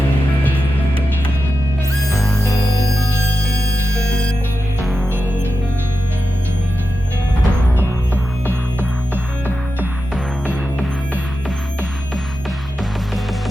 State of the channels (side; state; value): both; normal; correlation 0.91